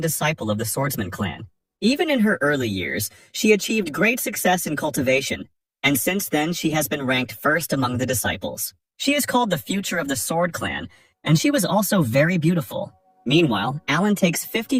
disciple of the Swordsman clan. Even in her early years, she achieved great success in cultivation, and since then she has been ranked first among the disciples. She is called the future of the Sword clan, and she was also very beautiful. Meanwhile, Alan takes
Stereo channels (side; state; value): both; identical; correlation 1.00